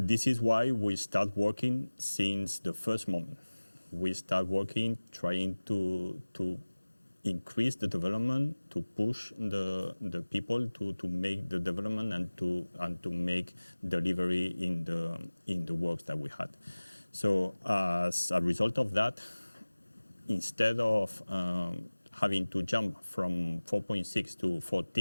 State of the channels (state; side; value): inverted; both; correlation -1.00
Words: is why we start working since the first moment. We start working, trying to increase the development, to push the people to make the development and to make delivery in the works that we had. So as a result of that, instead of having to jump from 4.6 to